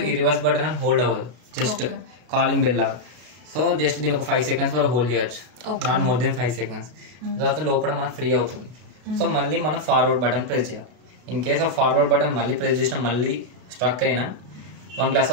ఈ రివర్స్ బటన్ అని హోల్డ్ అవ్వదు, జస్ట్ కాలింగ్ బెల్ లాగా. సో జస్ట్ దీని ఒక 5 seconds వరకు హోల్డ్ చేయొచ్చు, నాట్ మోర్ దెన్ 5 seconds. తర్వాత లోపల మనకు ఫ్రీ అవుతుంది. సో మళ్ళీ మనం ఫార్వర్డ్ బటన్ ప్రెస్ చేయాలి. In case of forward button మళ్ళీ ప్రెస్ చేసినా మళ్ళీ స్ట్రక్ అయినా 1 glass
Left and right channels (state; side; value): late; left; 32 ms